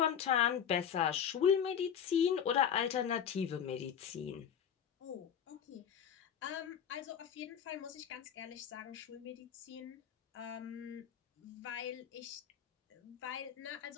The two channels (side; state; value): right; quieter; 8.4 dB